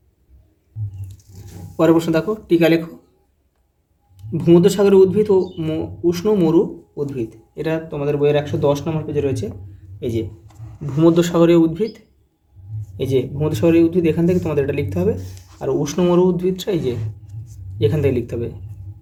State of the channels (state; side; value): identical; both; correlation 1.00